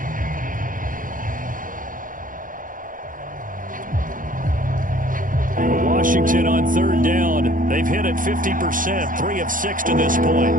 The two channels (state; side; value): late; left; 0.39 ms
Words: Washington on 3rd down. They've hit it 50%, 3 of 6 to this